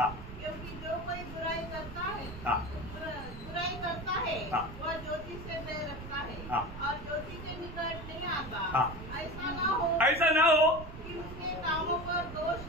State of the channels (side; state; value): right; noise; rumble, 11 dB below the sound